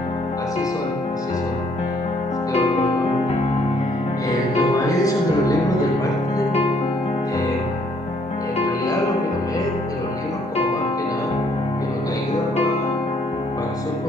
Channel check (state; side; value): normal; both; correlation 0.66